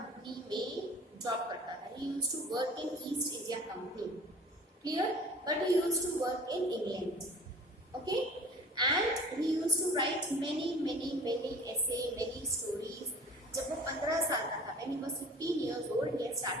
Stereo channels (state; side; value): normal; both; correlation 0.45